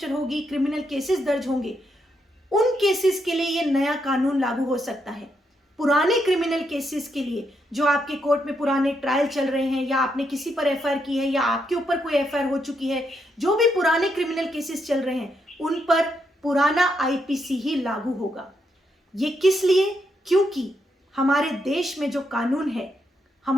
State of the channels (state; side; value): normal; both; correlation 0.79